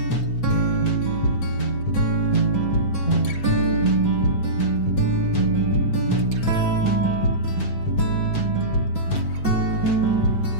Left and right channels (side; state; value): right; late; 7.0 ms